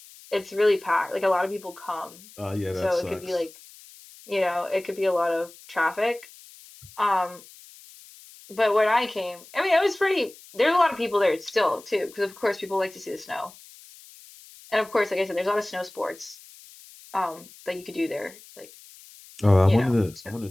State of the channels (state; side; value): noise; left; hiss, 21 dB below the sound